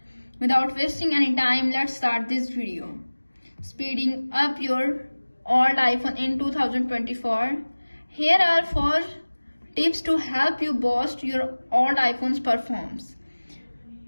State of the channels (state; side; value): inverted; both; correlation -1.00